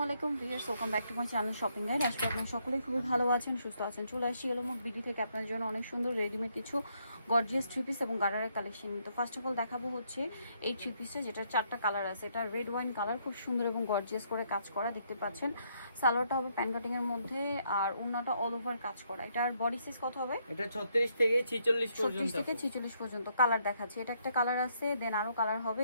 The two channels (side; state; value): both; inverted; correlation -0.73